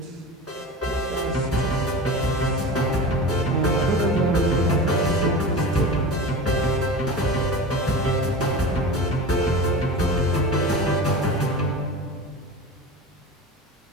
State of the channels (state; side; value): normal; both; correlation 0.31